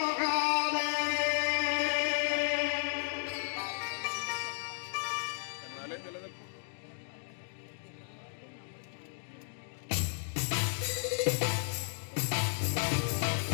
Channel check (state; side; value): silent; right; digital silence